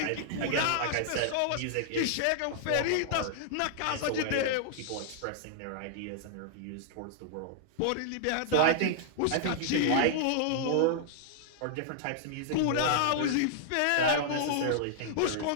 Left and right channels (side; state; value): both; different; correlation -0.01